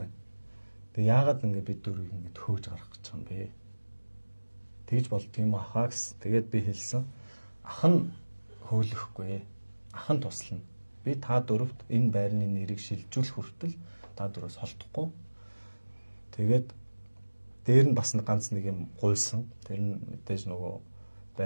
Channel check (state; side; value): inverted; both; correlation -1.00